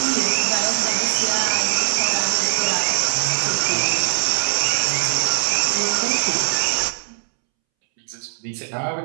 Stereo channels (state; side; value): silent; left; 65 dB below the other